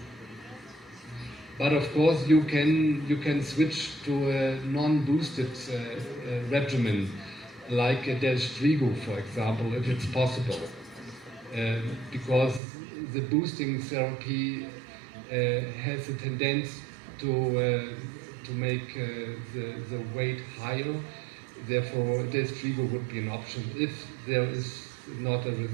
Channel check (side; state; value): left; drops out; at 12.6 s